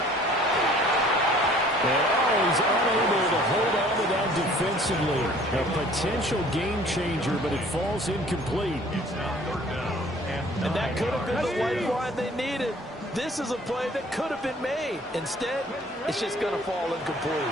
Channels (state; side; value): normal; both; correlation 0.53